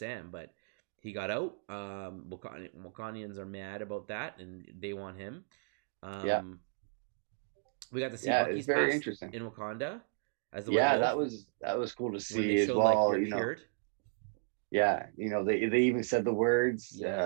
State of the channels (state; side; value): silent; left; digital silence